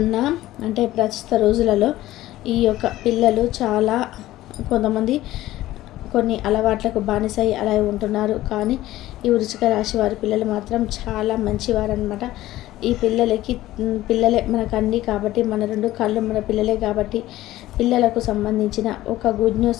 అంటే ప్రస్తుత రోజులలో ఈ యొక్క పిల్లలు చాలా కొంతమంది కొన్ని అలవాట్లకు బానిసై అలా ఉంటున్నారు. కానీ ఈ వృశ్చిక రాశి వారి పిల్లలు మాత్రం చాలా మంచివారు అనమాట. ఈ పిల్లలే మనకు అన్నీ కాబట్టి, మన 2 కళ్ళు మన పిల్లలే కాబట్టి, పిల్లలకు సంబంధించిన ఒక గుడ్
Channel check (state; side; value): quieter; right; 15.6 dB